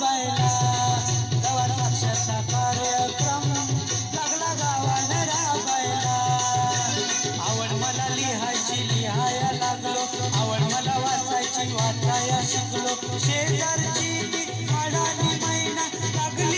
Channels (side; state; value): both; identical; correlation 1.00